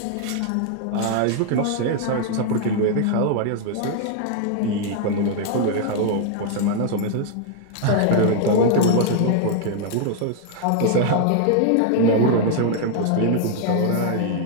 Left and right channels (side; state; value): both; different; correlation 0.00